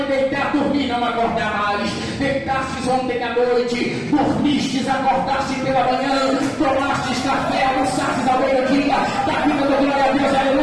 deitar, dormir, não acordar mais. Deitar, jantastes ontem à noite, dormistes, acordastes pela manhã, tomastes café, almoçastes ao meio-dia, da vida do glória a Deus,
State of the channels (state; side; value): identical; both; correlation 1.00